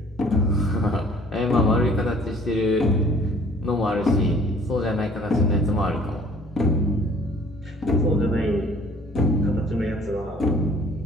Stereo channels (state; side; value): normal; both; correlation 0.55